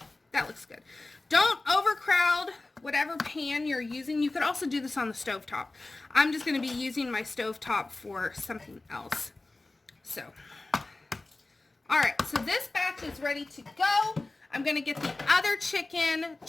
that looks good. Don't overcrowd whatever pan you're using. You could also do this on the stovetop. I'm just going to be using my stovetop for something else. So, alright, so this batch is ready to go. I'm going to get the other chicken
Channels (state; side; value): quieter; right; 3.1 dB